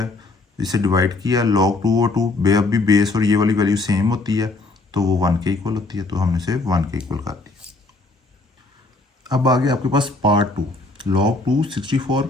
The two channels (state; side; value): quieter; right; 3.3 dB